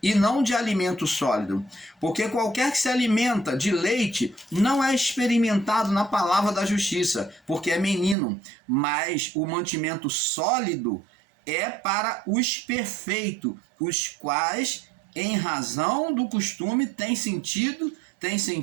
e não de alimento sólido. Porque qualquer que se alimenta de leite não é experimentado na palavra da justiça, porque é menino. Mas o mantimento sólido é para os perfeitos, os quais, em razão do costume, têm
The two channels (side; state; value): left; drops out; at 8.2 s